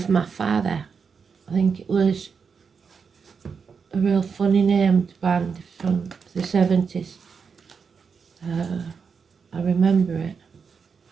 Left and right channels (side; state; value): left; quieter; 5.8 dB